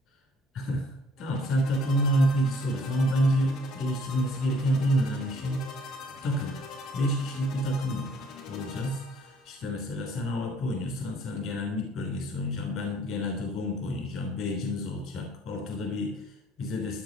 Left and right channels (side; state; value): both; normal; correlation 0.60